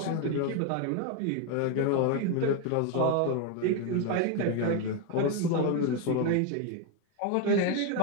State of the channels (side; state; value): both; different; correlation 0.02